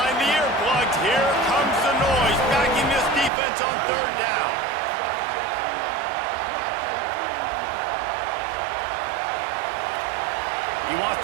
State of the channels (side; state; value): left; drops out; at 3.3 s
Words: the earplugs. Here comes the noise, backing this defense on 3rd down. He wants